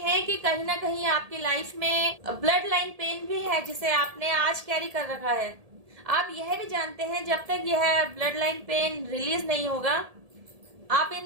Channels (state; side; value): late; left; 1.7 ms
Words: कि कहीं ना कहीं आपकी लाइफ में ब्लड लाइन पेन भी है जिसे आपने आज कैरी कर रखा है। आप यह भी जानते हैं जब तक यह ब्लड लाइन पेन रिलीज नहीं होगा आप